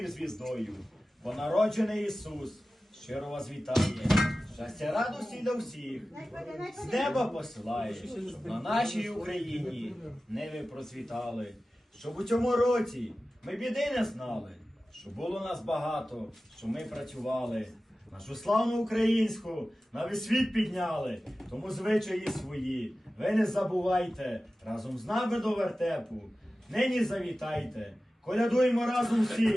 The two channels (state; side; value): normal; both; correlation 0.95